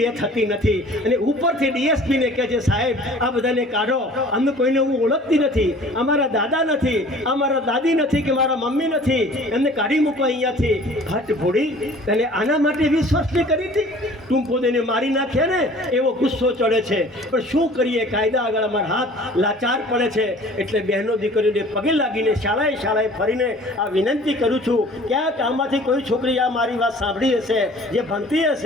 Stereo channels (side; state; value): both; normal; correlation 0.48